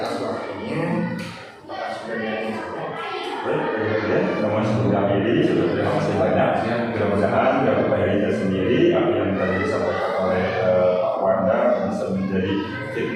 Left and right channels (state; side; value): identical; both; correlation 1.00